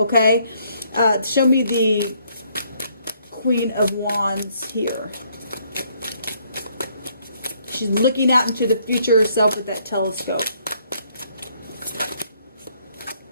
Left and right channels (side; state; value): both; inverted; correlation -0.68